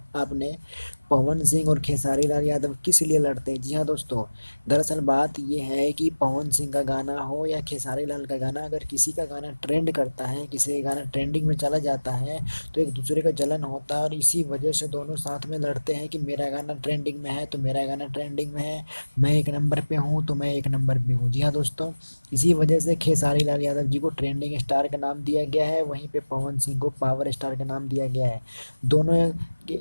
आपने। पवन सिंह और खेसारी लाल यादव किस लिए लड़ते हैं। जी हाँ दोस्तों, दरअसल बात ये है कि पवन सिंह का गाना हो या खेसारी लाल का गाना, अगर किसी का गाना ट्रेंड करता है, किसी का गाना ट्रेंडिंग में चला जाता है तो एक दूसरे का जलन होता है और इसी वजह से दोनों साथ में लड़ते हैं कि मेरा गाना ट्रेंडिंग में है तो मेरा गाना ट्रेंडिंग में है, मैं एक नंबर पे हूँ तो मैं एक नंबर पे हूँ। जी हाँ दोस्तों, इसी वजह से खेसारी लाल यादव जी को ट्रेंडिंग स्टार का नाम दिया गया है, वहीं पे पवन सिंह को पावर स्टार का नाम दिया गया है। दोनों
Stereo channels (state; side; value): inverted; both; correlation -1.00